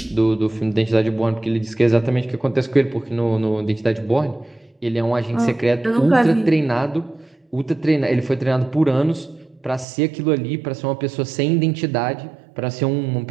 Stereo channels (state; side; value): drops out; left; at 9.9 s